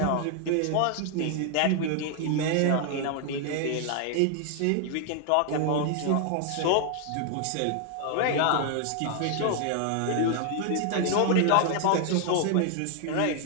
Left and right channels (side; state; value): both; different; correlation 0.00